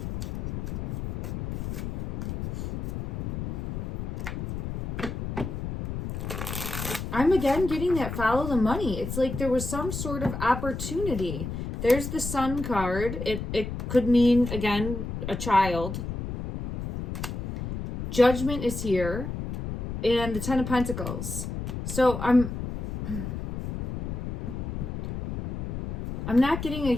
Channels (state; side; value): noise; left; rumble, 5 dB below the sound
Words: I'm again getting that follow the money. It's like there was some sort of opportunity. There's the Sun card. It could mean, again, a child. Judgment is here. And the Ten of Pentacles. So I'm not getting a